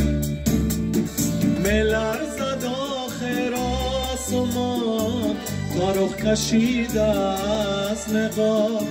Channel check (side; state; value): both; identical; correlation 1.00